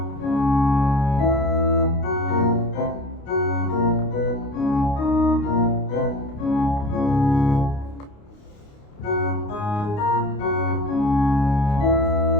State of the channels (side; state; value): right; late; 29 ms